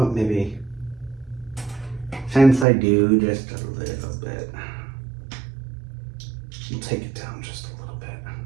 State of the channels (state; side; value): drops out; left; at 2.7 s